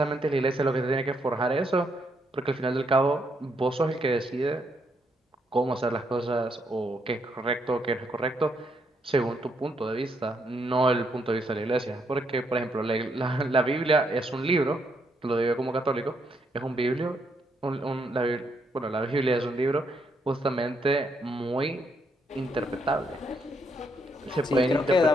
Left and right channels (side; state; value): both; normal; correlation 0.75